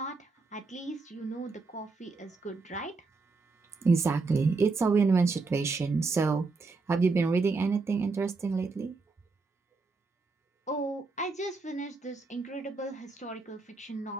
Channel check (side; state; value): left; quieter; 4.0 dB